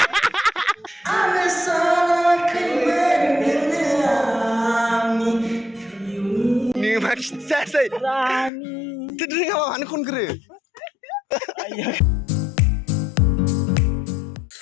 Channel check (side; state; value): right; drops out; at 8.5 s